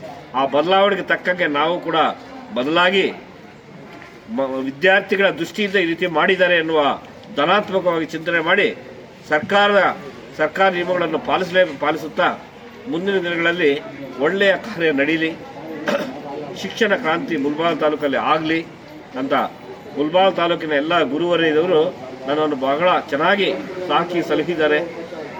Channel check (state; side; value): identical; both; correlation 1.00